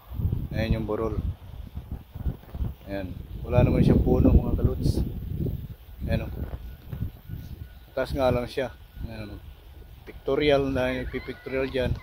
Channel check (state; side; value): identical; both; correlation 1.00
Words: Ayan yung burol. Ayan, wala naman siyang puno mga kalods. Ayan, taas nga lang siya. Ayan, pictorial na, nagpipictorial dyan.